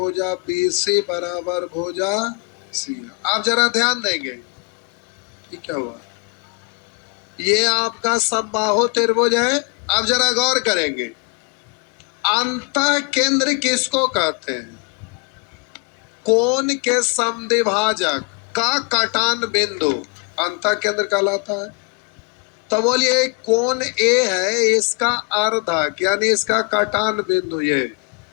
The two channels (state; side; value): quieter; right; 33.8 dB